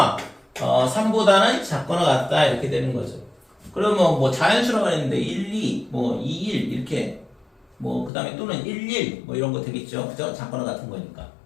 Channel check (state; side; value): drops out; right; at 8.1 s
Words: 3보다는 작거나 같다 이렇게 되는 거죠. 그러면 뭐 자연수라고 했는데 1, 2, 뭐 2, 1 이렇게 뭐 그 다음에 또는 1, 1 뭐 이런 거 되겠죠. 그죠? 작거나 같은 거니까.